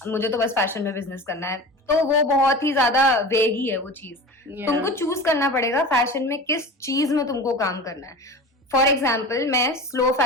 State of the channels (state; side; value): normal; both; correlation 0.33